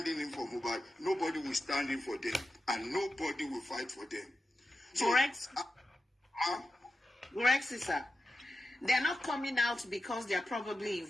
in for Mohbad, nobody will stand in for them and nobody will fight for them. So, correct, sister. They're not coming out because they're probably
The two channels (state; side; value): normal; both; correlation 0.92